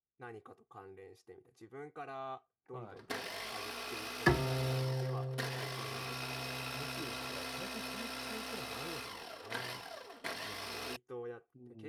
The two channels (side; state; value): both; identical; correlation 1.00